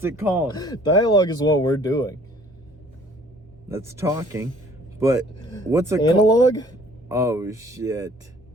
it called? Dialogue is what we're doing. That's talking. But what's it called? Analog? Oh, shit.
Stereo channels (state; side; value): normal; both; correlation 0.55